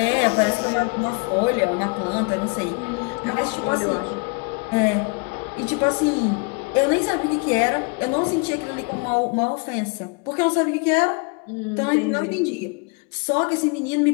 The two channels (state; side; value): quieter; right; 31.9 dB